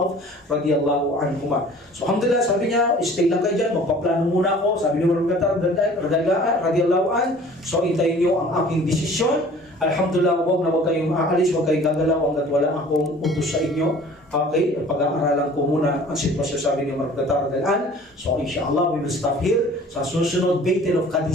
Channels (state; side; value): normal; both; correlation 0.48